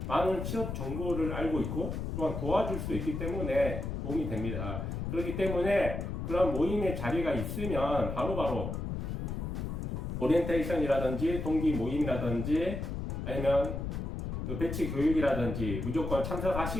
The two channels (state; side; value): noise; left; rumble, 4 dB below the sound